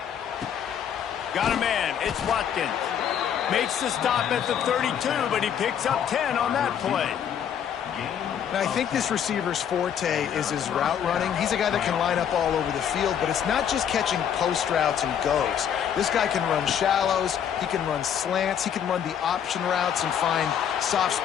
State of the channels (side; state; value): right; quieter; 8.8 dB